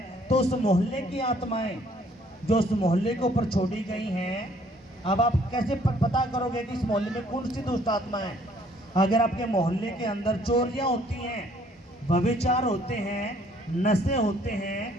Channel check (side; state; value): both; normal; correlation 0.62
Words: तो उस मोहल्ले की आत्माएं जो उस मोहल्ले के ऊपर छोड़ी गई हैं, अब आप कैसे पता करोगे कि इस मोहल्ले में कौन सी दुष्ट आत्मा है? अगर आपके मोहल्ले के अंदर चोरियां होती हैं, व्यभिचार होते हैं, नशे होते